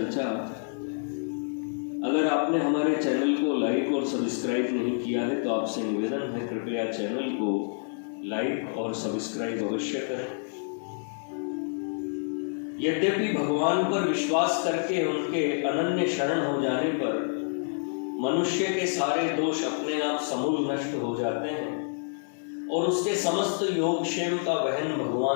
अगर आपने हमारे चैनल को लाइक और सब्सक्राइब नहीं किया है तो आपसे निवेदन है, कृपया चैनल को लाइक और सब्सक्राइब अवश्य करें। यद्यपि भगवान पर विश्वास करके उनके अनन्य शरण हो जाने पर मनुष्य के सारे दोष अपने आप समूल नष्ट हो जाते हैं और उसके समस्त योगक्षेम का वहन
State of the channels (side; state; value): right; silent; digital silence